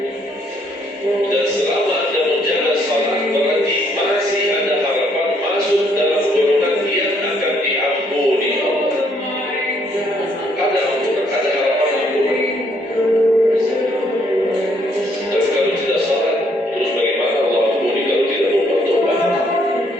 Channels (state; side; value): normal; both; correlation 0.68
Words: Dan selama Anda menjaga salat, berarti masih ada harapan masuk dalam golongan yang akan diampuni Allah. Ada ampunan, ada harapan ampunan. Dan kalau tidak salat, terus bagaimana Allah ampuni kalau tidak mau bertobat?